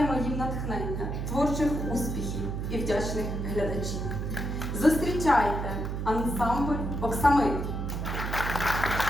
їм натхнення, творчих успіхів і вдячних глядачів. Зустрічайте ансамбль «Оксамит».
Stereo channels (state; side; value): noise; right; hum, 3 dB below the sound